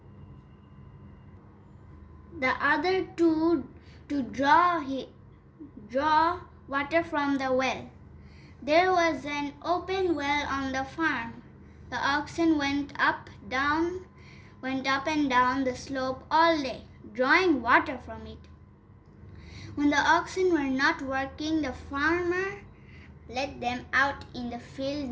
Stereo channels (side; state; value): both; identical; correlation 1.00